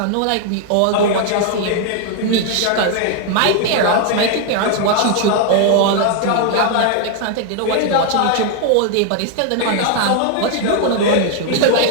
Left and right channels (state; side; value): different; both; correlation 0.00